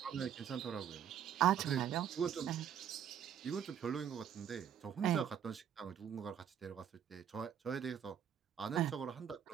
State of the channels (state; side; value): quieter; left; 9.1 dB